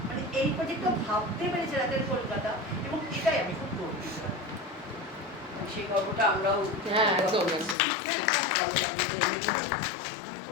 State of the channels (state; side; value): drops out; right; at 7.8 s